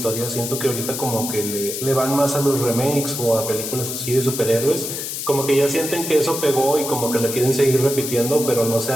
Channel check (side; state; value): left; noise; hiss, 5 dB below the sound